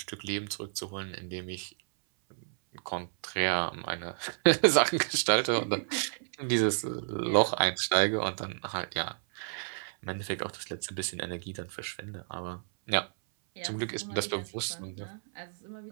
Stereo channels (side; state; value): left; silent; 57 dB below the other